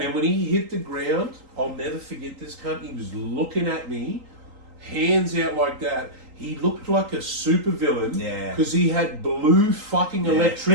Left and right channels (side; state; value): left; late; 3.8 ms